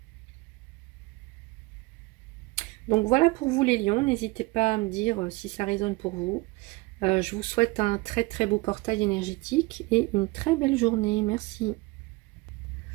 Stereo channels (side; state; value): left; quieter; 23.4 dB